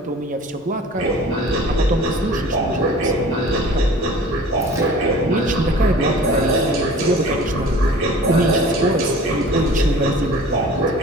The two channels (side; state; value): both; normal; correlation 0.44